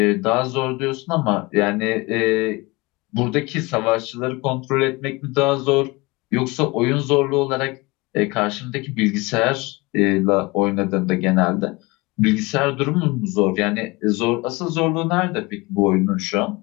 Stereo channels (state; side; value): quieter; right; 23.8 dB